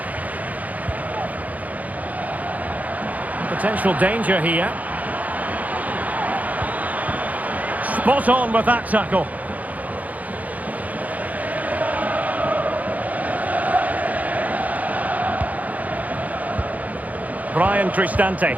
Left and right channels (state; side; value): late; left; 0.076 ms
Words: Potential danger here. Spot on with that tackle. Brian Cristante.